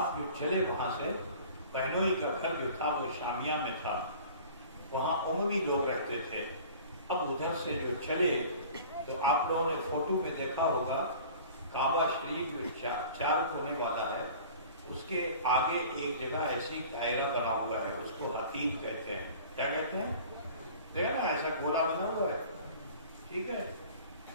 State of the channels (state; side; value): inverted; both; correlation -0.44